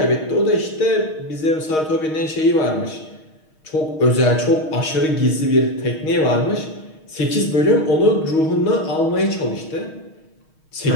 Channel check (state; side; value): late; right; 6.4 ms